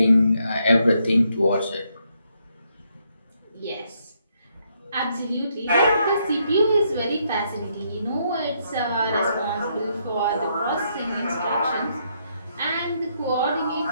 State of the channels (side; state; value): both; inverted; correlation -0.75